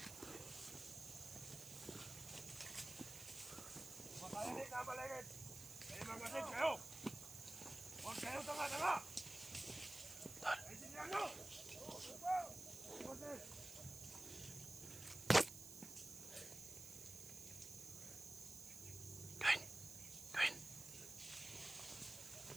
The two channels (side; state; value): right; noise; hiss, 11 dB below the sound